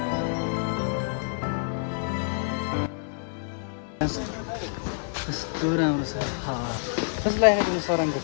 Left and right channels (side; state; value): right; silent; digital silence